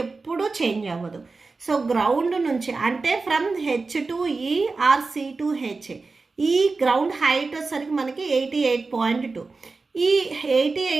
ఎప్పుడూ చేంజ్ అవ్వదు. సో గ్రౌండ్ నుంచి అంటే ఫ్రమ్ హెచ్ టు ఈ ఆర్ సి టు హెచ్ ఈ గ్రౌండ్ హైట్ వచ్చేసరికి మనకి 88.2. ఈ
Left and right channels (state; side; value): quieter; left; 4.0 dB